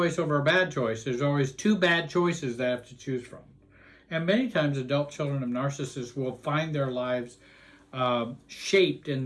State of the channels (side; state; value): both; identical; correlation 1.00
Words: over a bad choice. There's always 2 bad choices that I have to choose from. And many times adult children of narcissists will find their lives shaped in